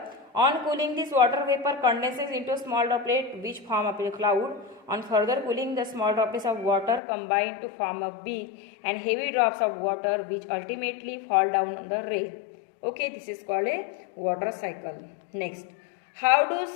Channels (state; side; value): drops out; right; at 7.0 s